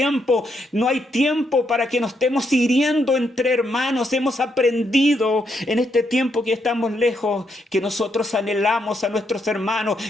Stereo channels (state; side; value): normal; both; correlation 0.78